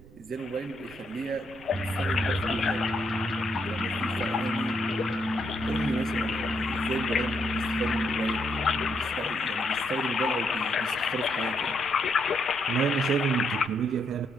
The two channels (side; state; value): right; noise; rumble, 22 dB below the sound